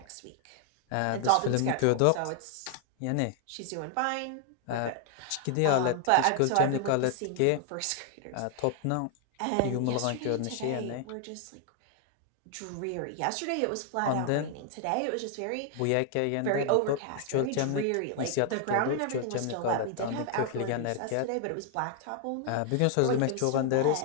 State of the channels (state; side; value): different; both; correlation 0.00